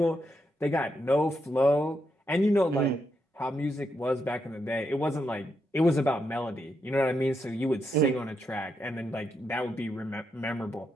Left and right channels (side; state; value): both; normal; correlation 0.82